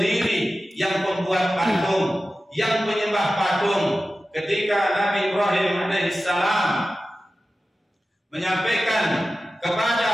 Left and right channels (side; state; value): both; normal; correlation 0.94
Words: yang pembuat patung, yang penyembah patung. Ketika Nabi Ibrahim alaihissalam menyampaikan kepada